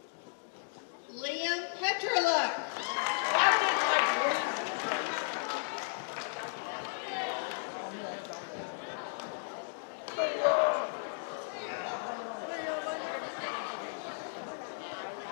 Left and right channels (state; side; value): silent; right; digital silence